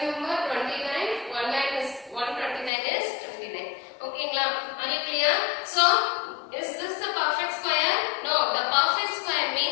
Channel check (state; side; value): drops out; right; at 2.7 s